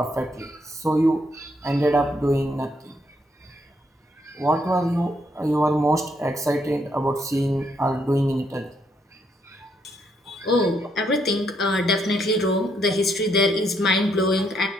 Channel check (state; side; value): normal; both; correlation 0.74